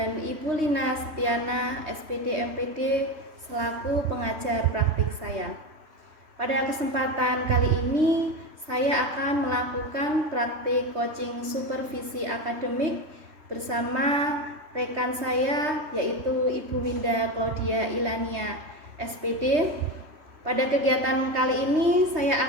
Ibu Lina Setiana SPD MPD selaku pengajar praktik saya. Pada kesempatan kali ini saya akan melakukan praktik coaching supervisi akademik bersama rekan saya yaitu Ibu Winda Claudia Ilania SPD. Pada kegiatan kali ini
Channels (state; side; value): late; left; 3.3 ms